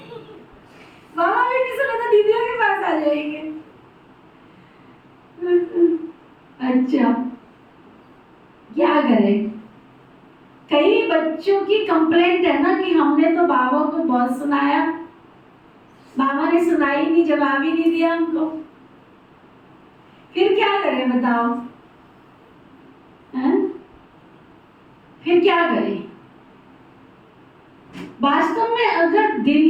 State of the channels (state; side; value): identical; both; correlation 1.00